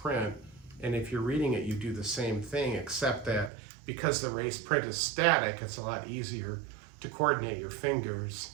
and if you're reading it, you do the same thing, except that because the raised print is static, it's a lot easier to coordinate your fingers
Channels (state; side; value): drops out; left; at 3.5 s